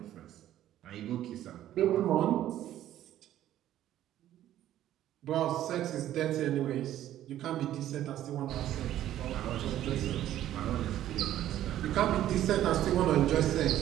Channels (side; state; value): left; quieter; 12.6 dB